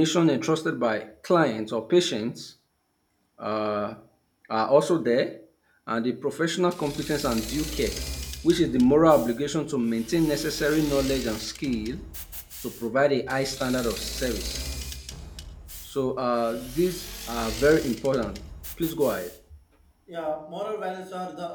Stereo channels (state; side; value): identical; both; correlation 1.00